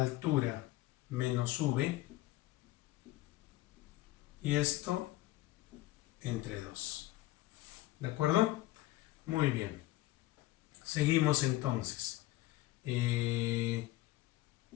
menos v. Y esto entre 2. ¿De acuerdo? Muy bien. Seguimos entonces.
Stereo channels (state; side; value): quieter; right; 17.5 dB